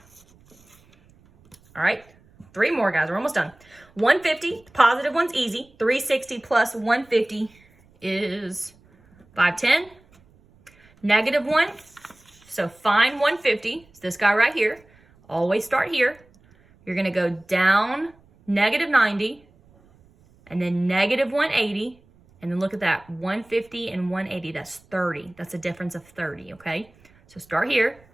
All right. 3 more, guys. We're almost done. 150, positive one's easy. 360 plus 150 is 510. Negative 1, so find 150. It's this guy right here. Always start here. You're going to go down negative 90 and then negative 180. And then look at that, 150 and 180, that's 30. That's a difference of 30, okay? So start here,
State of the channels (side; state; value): right; noise; rumble, 30 dB below the sound